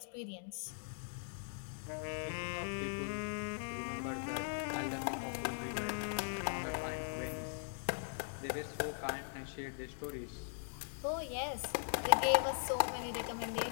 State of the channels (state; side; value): silent; right; digital silence